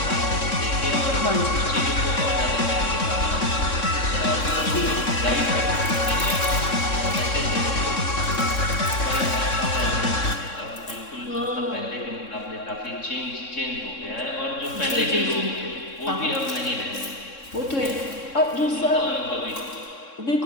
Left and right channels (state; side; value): late; right; 3.6 ms